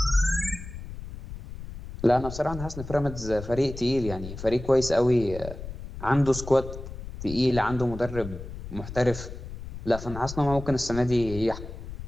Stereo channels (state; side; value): noise; left; rumble, 11 dB below the sound